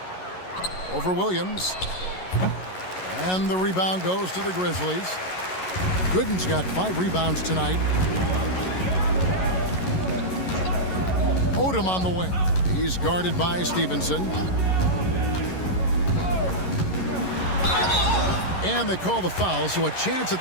Over Williams. And the rebound goes to the Grizzlies. Gooden's got 5 rebounds tonight. Odom on the wing. He's guarded by Stevenson. And they call the foul, so a chance at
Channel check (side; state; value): right; late; 11 ms